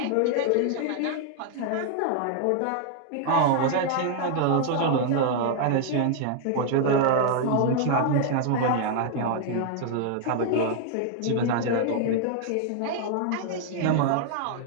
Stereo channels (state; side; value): different; both; correlation 0.00